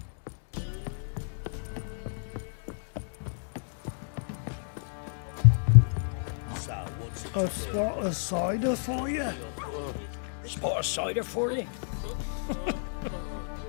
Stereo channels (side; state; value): right; silent; digital silence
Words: So, what's it A spot of cider for you. Spot of cider for you?